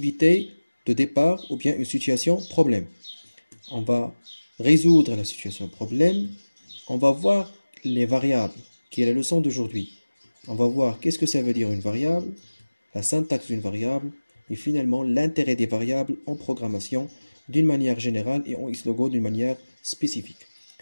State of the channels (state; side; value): inverted; both; correlation -1.00